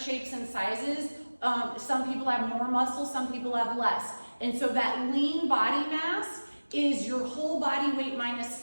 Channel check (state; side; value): inverted; both; correlation -1.00